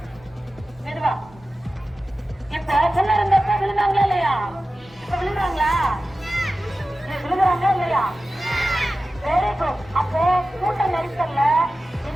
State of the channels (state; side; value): normal; both; correlation 0.95